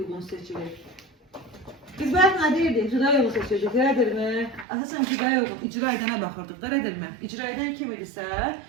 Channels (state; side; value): drops out; left; at 4.7 s